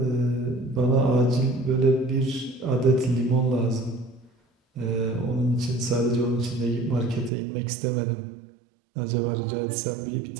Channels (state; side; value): drops out; left; at 7.3 s